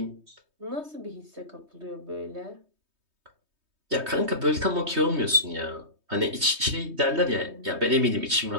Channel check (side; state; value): left; late; 3.2 ms